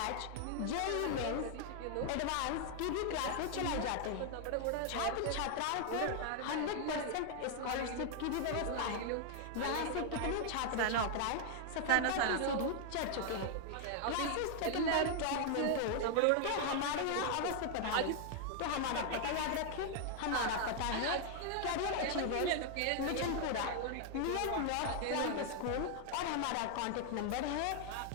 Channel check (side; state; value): both; different; correlation 0.00